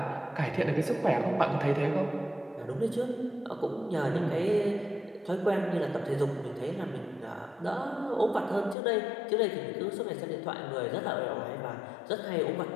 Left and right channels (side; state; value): right; drops out; at 8.8 s